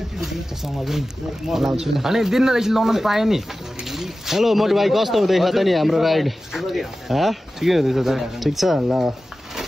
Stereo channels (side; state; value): both; normal; correlation 0.95